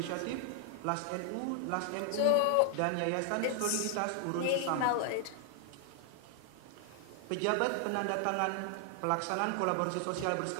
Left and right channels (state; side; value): different; both; correlation 0.00